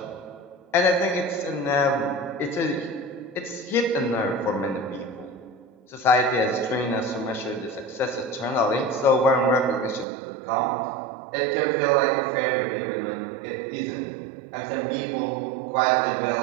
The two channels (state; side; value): drops out; left; at 10.1 s